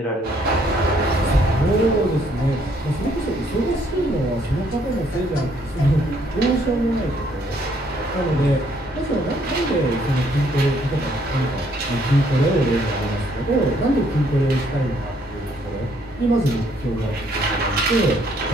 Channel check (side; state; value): both; normal; correlation 0.67